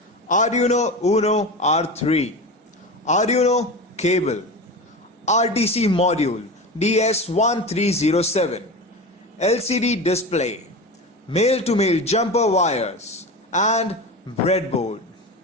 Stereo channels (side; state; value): both; normal; correlation 0.26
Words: Arduino Uno R3, Arduino cable, RTC module DS3231 LCD display, male-to-male jumper wires, and breadboard.